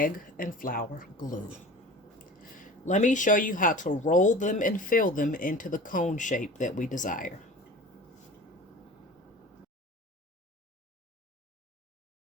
and flour glue. Let me show you how to roll them and fill them into the cone shape that we desire.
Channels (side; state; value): both; normal; correlation 0.39